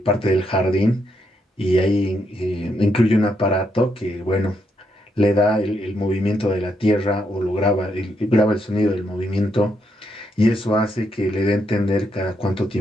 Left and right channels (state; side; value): normal; both; correlation 0.78